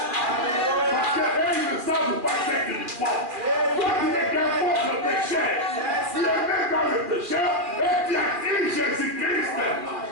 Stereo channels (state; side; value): late; left; 2.4 ms